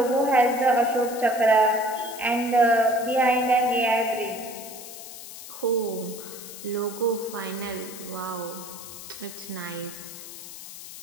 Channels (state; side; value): noise; left; hiss, 13 dB below the sound